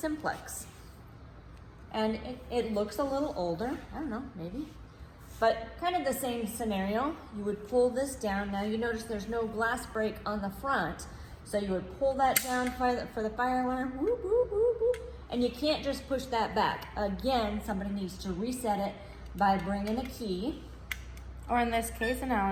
And it looks a little older, I don't know, maybe. But kind of the same scenario. You would pull this down. Now you notice there's no glass break on the front. So you would pull that down for the fire alarm, whoop, whoop, whoop, whoop, and you can't just push that back. Again, somebody needs to reset it by bringing a key. Or in this case, an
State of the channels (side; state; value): both; identical; correlation 1.00